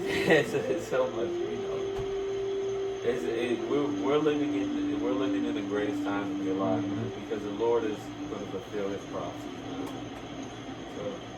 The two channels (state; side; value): identical; both; correlation 1.00